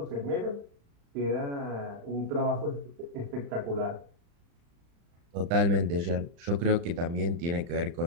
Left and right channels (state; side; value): late; left; 35 ms